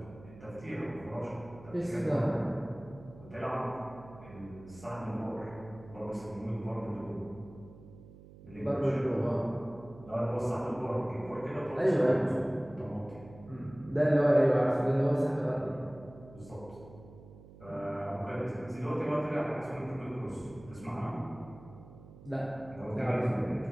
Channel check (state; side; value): noise; right; hum, 19 dB below the sound